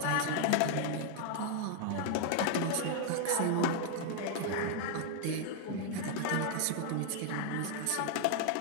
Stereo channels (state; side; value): different; both; correlation 0.00